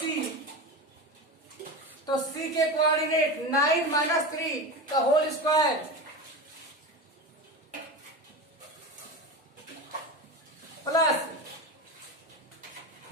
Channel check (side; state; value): both; normal; correlation 0.25